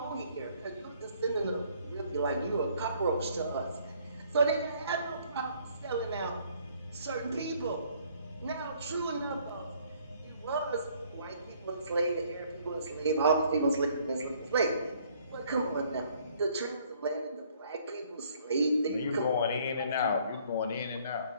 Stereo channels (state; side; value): inverted; both; correlation -0.62